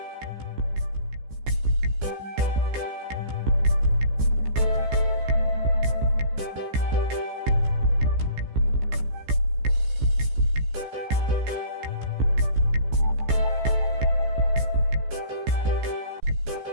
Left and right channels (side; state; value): left; late; 15 ms